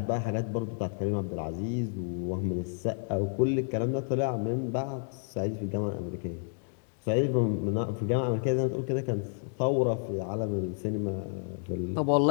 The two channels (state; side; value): silent; right; digital silence